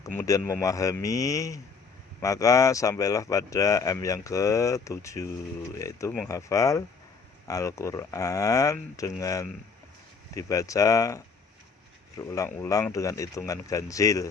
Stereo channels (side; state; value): right; quieter; 5.2 dB